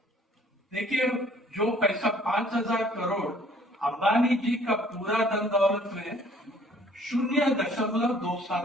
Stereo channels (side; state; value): both; normal; correlation 0.57